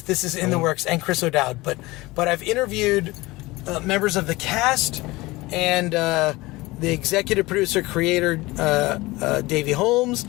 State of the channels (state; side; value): quieter; right; 20.9 dB